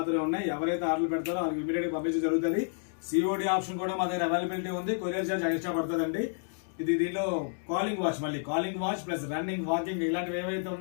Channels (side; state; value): right; silent; digital silence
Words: ఉన్నాయి. ఎవరైతే ఆర్డర్ పెడతారో వాళ్ళకి ఇమీడియట్ గా పంపించడం జరుగుతుంది. సిఓడి ఆప్షన్ కూడా మా దగ్గర అవైలబిలిటీ ఉంది. కొరియర్ చార్జ్ ఎక్స్ట్రా పడుతుందండి. దీనిలో కాలింగ్ వాచ్, మళ్ళీ calling watch plus running, walking ఇలాంటివి ఏవైతే